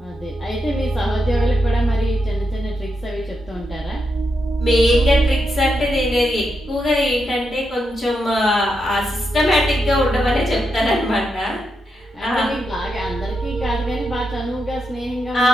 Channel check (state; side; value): normal; both; correlation 0.84